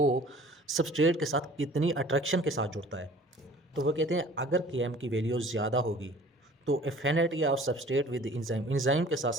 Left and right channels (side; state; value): both; normal; correlation 0.49